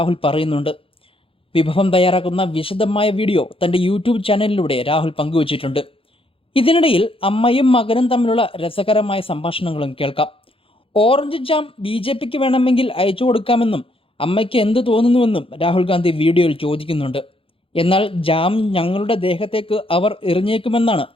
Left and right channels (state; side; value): late; right; 0.26 ms